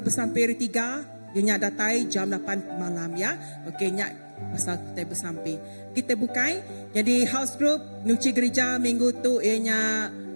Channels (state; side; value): inverted; both; correlation -1.00